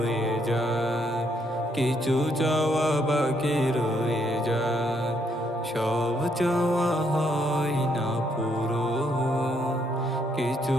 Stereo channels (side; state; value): both; normal; correlation 0.73